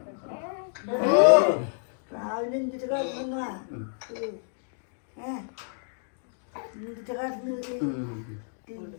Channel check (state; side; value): silent; right; digital silence